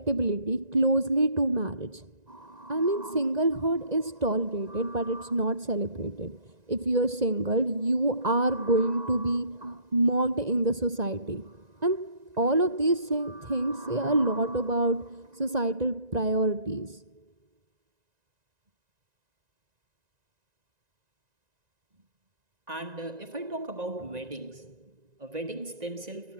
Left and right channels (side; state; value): left; late; 1.9 ms